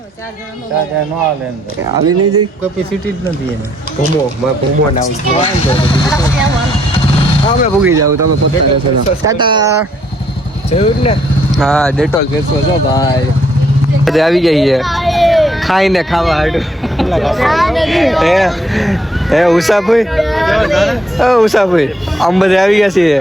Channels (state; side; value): normal; both; correlation 0.70